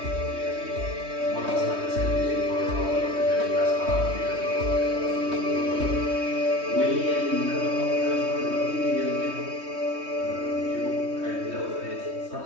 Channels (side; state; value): left; late; 3.2 ms